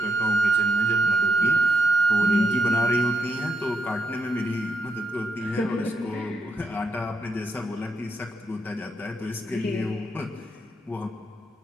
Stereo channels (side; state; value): both; normal; correlation 0.80